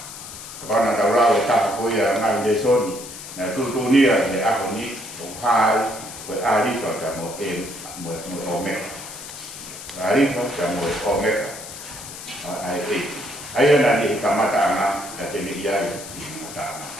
pana da ra ta ko ya na le soni na tu nia ne a ko ni o hai ko ari fa ka mo o me ari fa ka mo o me ai na ni ka mata ana ka te ni ya ni mata ana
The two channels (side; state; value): left; noise; hiss, 12 dB below the sound